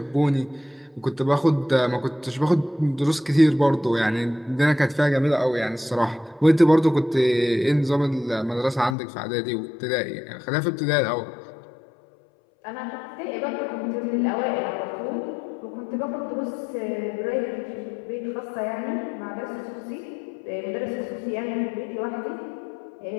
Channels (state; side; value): drops out; right; at 9.0 s